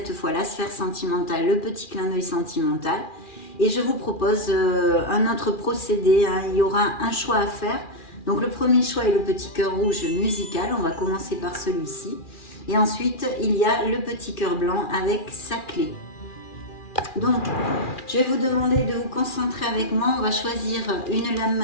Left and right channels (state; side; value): late; right; 2.4 ms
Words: fois la sphère sentimentale, le petit clin d'œil sentimental. Et je vous propose un autre procédé, hein. Il y aura un choix à faire. Donc le premier choix est le petit cœur rouge musical, on va commencer par celui-ci. Et ensuite, il y a le petit cœur blanc avec sa clé. Donc, je vais vous demander de vous concentrer avec moi. On va choisir une lame